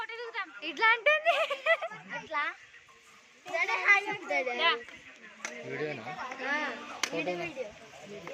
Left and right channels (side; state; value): both; identical; correlation 1.00